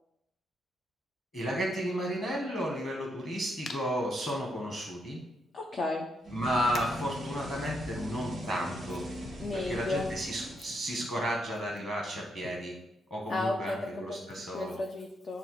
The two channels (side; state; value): both; normal; correlation 0.78